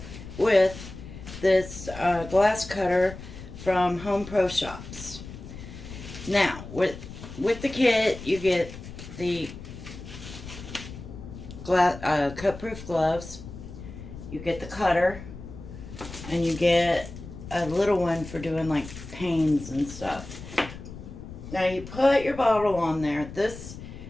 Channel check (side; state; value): left; noise; rumble, 13 dB below the sound